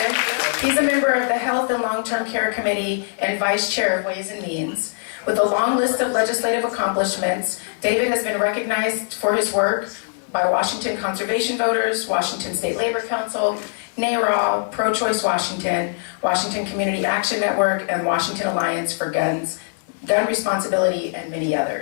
He's a member of the Health and Long-Term Care Committee and Vice Chair of Ways and Means. With a long list of legislative accomplishments, David has been recognized for his work by Washington Conservation Voters, Washington State Labor Council, NARAL, Pro-Choice Washington, Washington Community Action Network, and Washington Alliance for Gun Responsibility, and many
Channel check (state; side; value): silent; right; digital silence